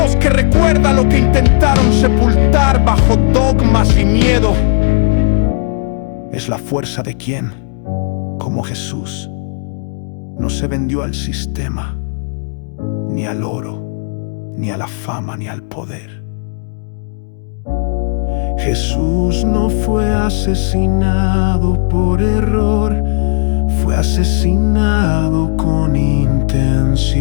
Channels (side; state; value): right; silent; digital silence